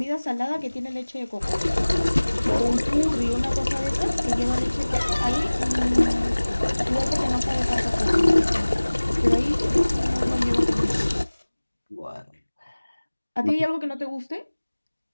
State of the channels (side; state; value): both; inverted; correlation -1.00